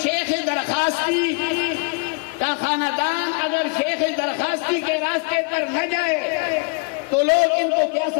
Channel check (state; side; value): quieter; right; 34.5 dB